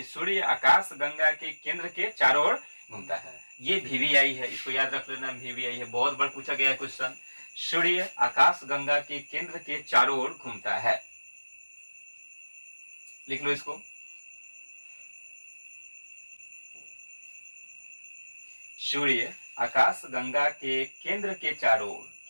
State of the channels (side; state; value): both; inverted; correlation -1.00